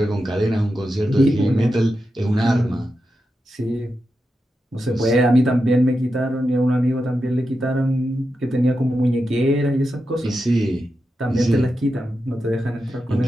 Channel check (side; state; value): both; normal; correlation 0.89